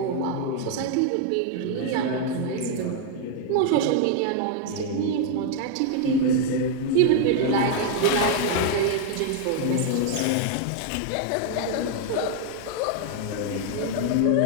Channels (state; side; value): different; both; correlation 0.00